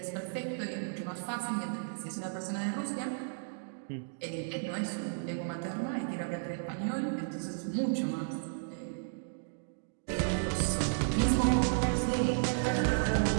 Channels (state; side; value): silent; left; digital silence